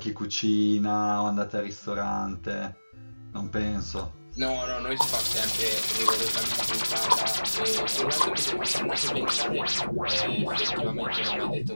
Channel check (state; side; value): inverted; both; correlation -1.00